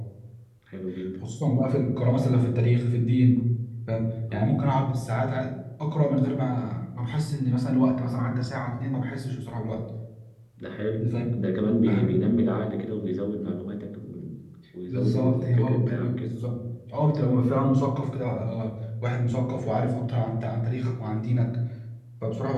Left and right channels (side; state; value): both; identical; correlation 1.00